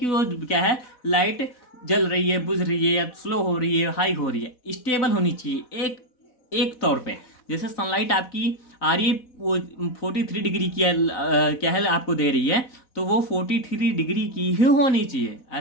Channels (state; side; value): late; right; 4.1 ms